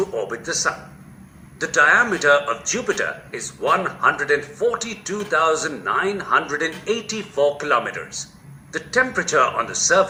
orbit the Sun. The diameter of Jupiter is 142,984 kilometers. The temperature on the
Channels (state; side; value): identical; both; correlation 1.00